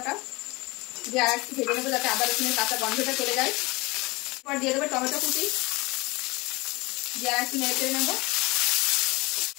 দিয়ে আর একটু ভেজে নেবো যাতে আদা রসুনের কাঁচা গন্ধটা চলে যায়। এবার দিয়ে দেবো টমেটো কুচি, দিয়ে আর একটু নেড়ে চেড়ে নেবো।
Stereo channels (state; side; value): quieter; right; 24.0 dB